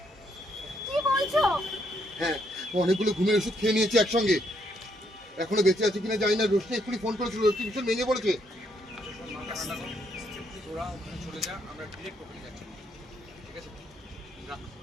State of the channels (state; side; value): normal; both; correlation 0.74